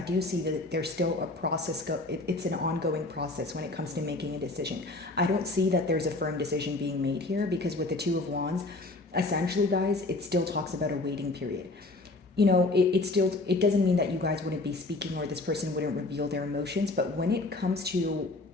see that there's still a process. It's an ongoing process when it comes to making a decision. I don't see that there's a firm decision being made here, because with the Two of Wands, essentially, guys, it still talks about a waiting period. It doesn't mean that you guys wouldn't be speaking or this person wouldn't reveal their emotions, but when it comes to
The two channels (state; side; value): quieter; right; 3.1 dB